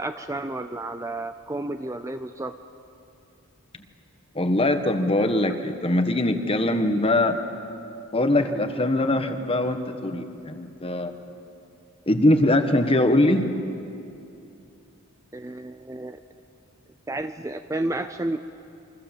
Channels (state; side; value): normal; both; correlation 0.60